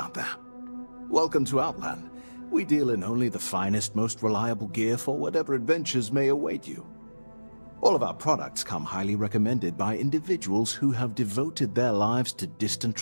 there. Welcome to Outland. We deal in only the finest, most reliable gear for whatever adventures may await you. All of our products come highly recommended by individuals who have devoted their lives to distant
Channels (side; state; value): both; inverted; correlation -1.00